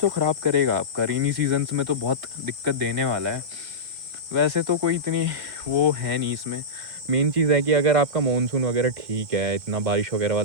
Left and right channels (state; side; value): late; left; 2.1 ms